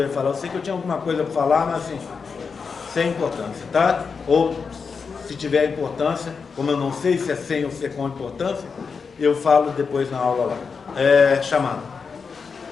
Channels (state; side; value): quieter; right; 5.4 dB